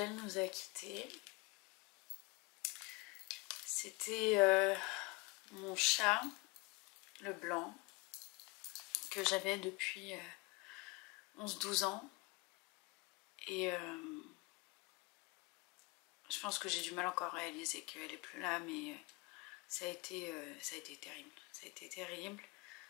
nous a quittés. C'était mon chat, le blanc, que j'avais depuis 11-12 ans. Et je pense que j'ai du mal encore à réaliser qu'elle est plus là, mais ça a été terrible. Ça a été terrible.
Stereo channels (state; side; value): quieter; right; 25.8 dB